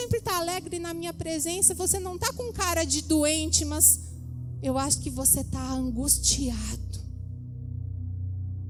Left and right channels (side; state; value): both; identical; correlation 1.00